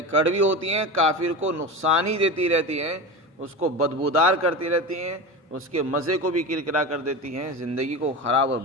کڑوی ہوتی ہیں، کافر کو نقصان ہی دیتی رہتی ہیں، اس کو بدبودار کرتی رہتی ہیں، اس کے مزے کو بھی کرکرا کر دیتی ہیں، زندگی کو خراب اور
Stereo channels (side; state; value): both; normal; correlation 0.25